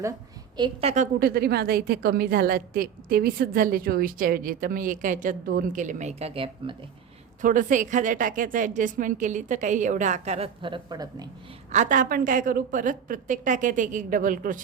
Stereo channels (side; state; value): left; quieter; 7.9 dB